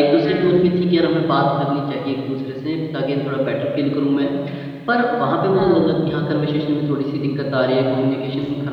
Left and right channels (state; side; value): identical; both; correlation 1.00